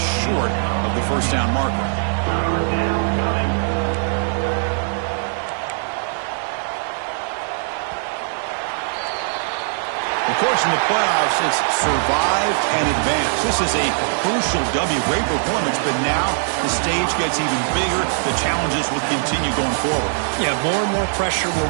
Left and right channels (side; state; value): left; silent; digital silence